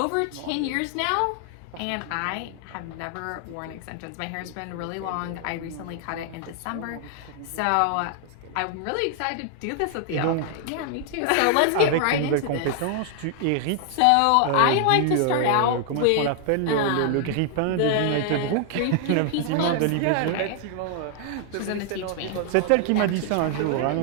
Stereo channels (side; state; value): both; different; correlation 0.00